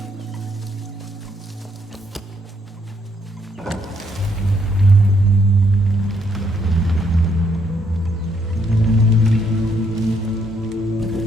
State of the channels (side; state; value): both; normal; correlation 0.72